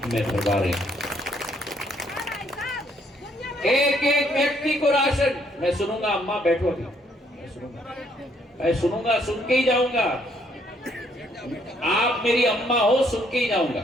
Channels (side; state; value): both; normal; correlation 0.69